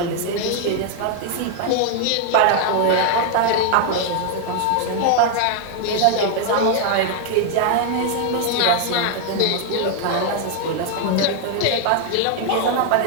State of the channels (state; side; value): different; both; correlation 0.00